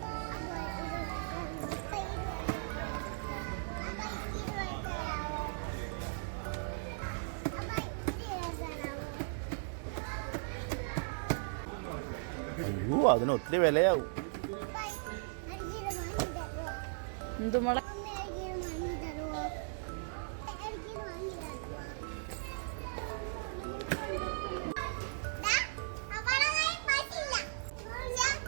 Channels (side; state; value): left; silent; digital silence